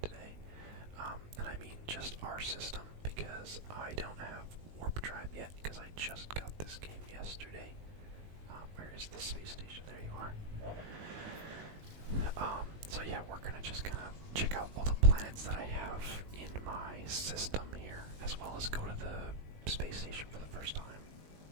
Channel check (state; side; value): late; left; 19 ms